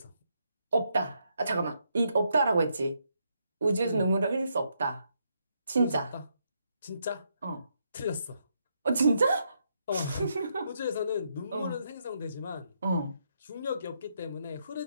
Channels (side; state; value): both; inverted; correlation -0.78